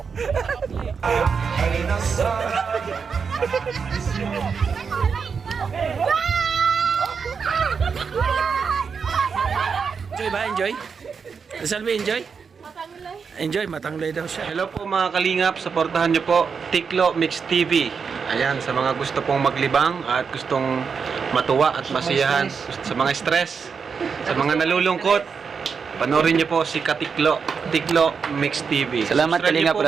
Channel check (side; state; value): left; quieter; 5.9 dB